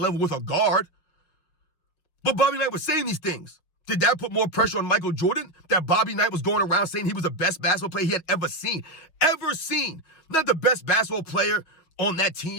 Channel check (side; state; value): right; late; 6.1 ms